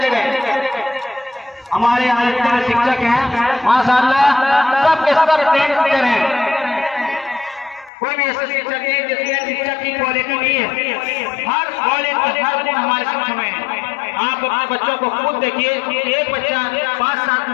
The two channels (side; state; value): right; drops out; at 7.9 s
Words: गए। हमारे यहाँ जितने शिक्षक हैं माशाअल्लाह सब के सब ट्रेन टीचर हैं, कोई भी ऐसे शिक्षक नहीं जिसमें शिक्षक की क्वालिटी नहीं है। हर क्वालिटी हर गुण हमारे शिक्षक में है। आप अपने बच्चों को खुद देखिए, एक बच्चा 5 साल